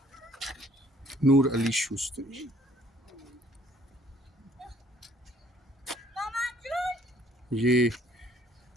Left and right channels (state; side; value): normal; both; correlation 0.61